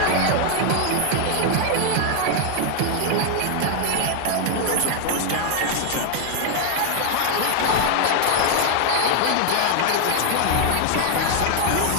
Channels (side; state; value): both; different; correlation 0.00